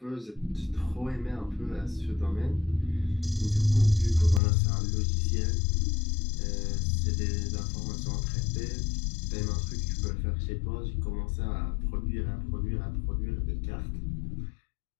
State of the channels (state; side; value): drops out; right; at 4.4 s